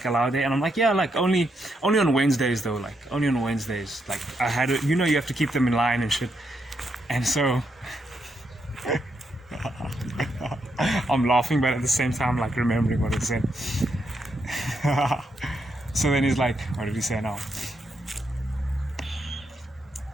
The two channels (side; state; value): both; normal; correlation 0.80